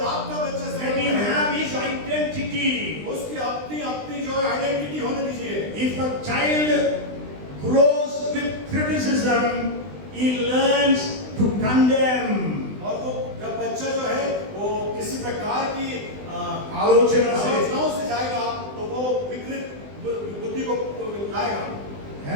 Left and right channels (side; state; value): left; late; 20 ms